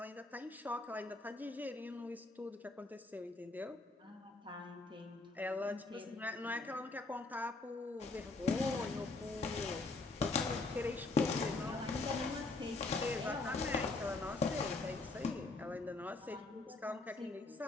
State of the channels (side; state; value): right; quieter; 3.4 dB